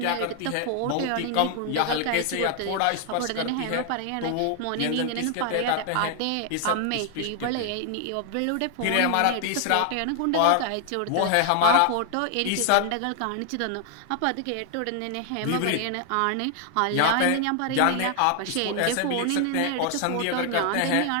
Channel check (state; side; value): different; both; correlation 0.00